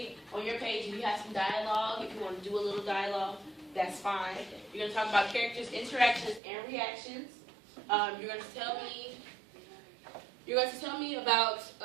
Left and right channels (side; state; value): left; drops out; at 6.4 s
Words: on your page if you have some dialogue, if you want to do a little dialogue, that's fine. You're going to talk about characters' interactions and reactions. You're going to tell me about